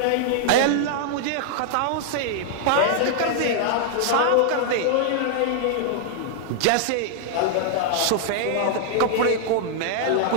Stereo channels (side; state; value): both; different; correlation -0.01